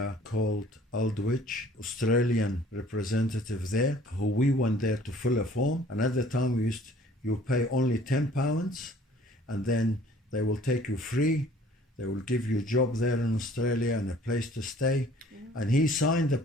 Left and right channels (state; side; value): normal; both; correlation 0.54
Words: called Aldwych, Australian representative there, who we went there to fill a form. And at the time you pay only £10, and then they will take you free. They will give you a job there in Australia and a place to stay. Yeah. And he signed the